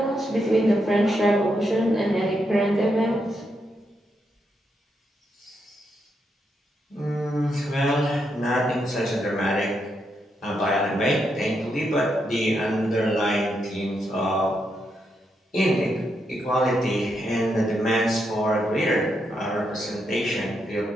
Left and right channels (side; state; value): both; normal; correlation 0.81